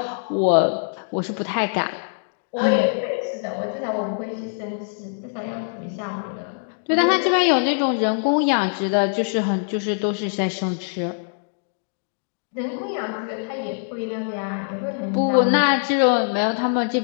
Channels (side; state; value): right; silent; digital silence